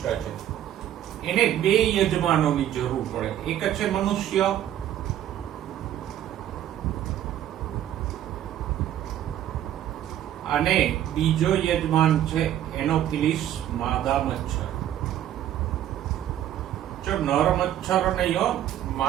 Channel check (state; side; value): quieter; left; 11.6 dB